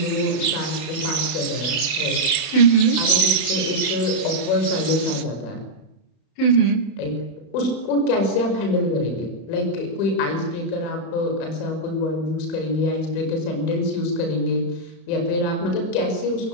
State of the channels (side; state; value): right; late; 31 ms